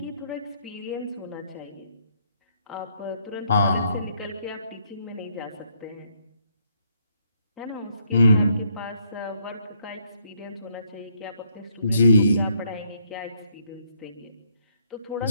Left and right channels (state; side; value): inverted; both; correlation -0.72